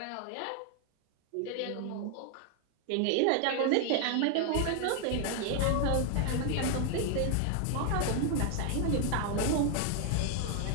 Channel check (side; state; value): both; different; correlation 0.00